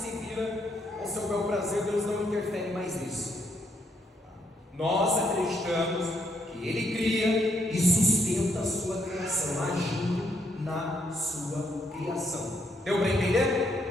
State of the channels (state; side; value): normal; both; correlation 0.73